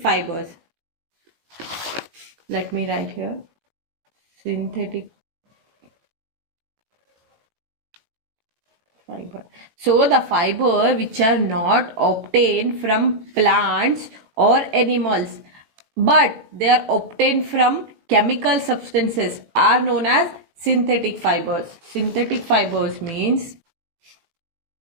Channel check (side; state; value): left; late; 18 ms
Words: Let me write here. Synthetic fiber. So the fiber which are not obtained from plants or animals, but they are obtained from chemical substances are known as synthetic fibers. Synthetic fibers means